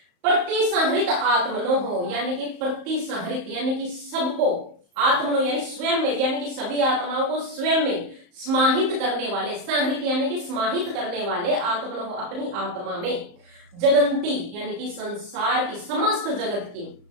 प्रति संहृत आत्मनो हो यानी कि प्रति संहृत यानी कि सबको, आत्मनो यानी स्वयं में, यानी कि सभी आत्माओं को स्वयं में समाहित करने वाले, संहृत यानी कि समाहित करने वाले, आत्मनो अपनी आत्मा में, जगंती यानी कि संसार की समस्त जगत की,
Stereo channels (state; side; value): late; left; 34 ms